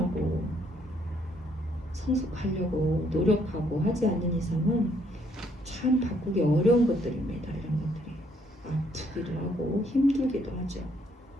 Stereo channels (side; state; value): both; normal; correlation 0.69